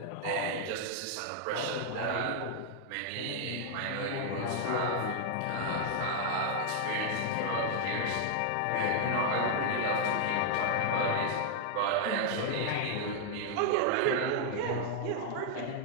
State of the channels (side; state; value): both; different; correlation 0.00